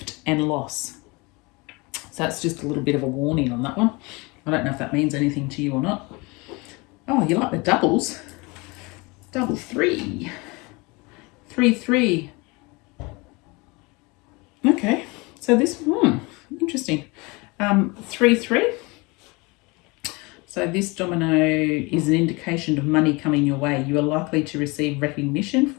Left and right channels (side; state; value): right; quieter; 26.2 dB